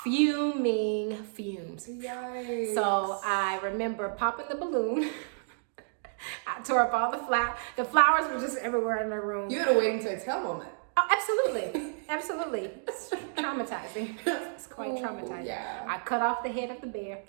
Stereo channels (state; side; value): silent; left; digital silence